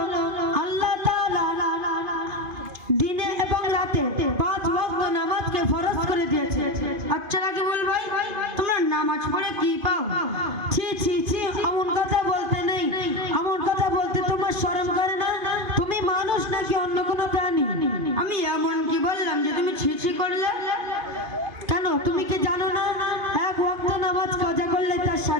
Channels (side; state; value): left; late; 2.5 ms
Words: আল্লাহ তাআলা দিনে এবং রাতে 5 ওয়াক্ত নামাজকে ফরজ করে দিয়েছে। আচ্ছা রাকিবুল ভাই, তোমরা নামাজ পড়ে কি পাও? ছি ছি ছি, এমন কথা বলতে নেই। এমন কথা বলতে তোমার শরম করে না? তুমি মানুষ নাকি অন্য কোনো প্রাণী? আমি এমন কি বললাম যে তুমি ছিছি করলে? কেন, তুমি কি জানো না এক ওয়াক্ত নামাজ কাজা করলে তার